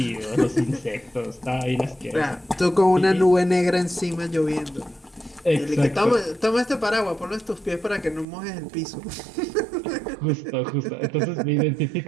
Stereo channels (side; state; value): left; drops out; at 8.2 s